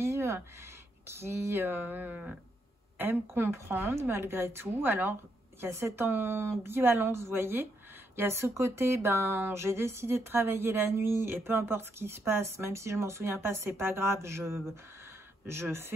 qui aiment comprendre malgré tout. Alors, il y a cette ambivalence, vous voyez. Il y a ce côté, ben, j'ai décidé de travailler la nuit, et peu importe ce qui se passe, même si je m'en souviens pas, c'est pas grave, je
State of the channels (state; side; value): normal; both; correlation 0.78